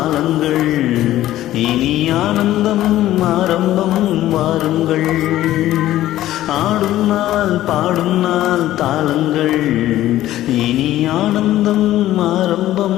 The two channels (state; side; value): quieter; right; 14.1 dB